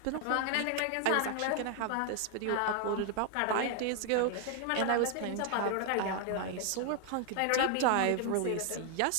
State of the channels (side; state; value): both; different; correlation 0.00